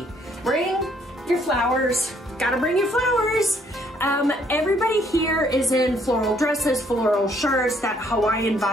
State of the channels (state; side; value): normal; both; correlation 0.66